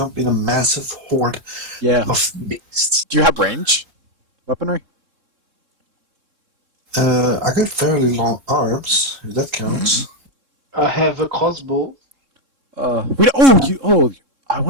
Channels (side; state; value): left; late; 3.7 ms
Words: in a massive horde Yeah. of beasts. Do you have range weaponry? I got fairly long arms, if that counts. I have a crossbow. We don't, I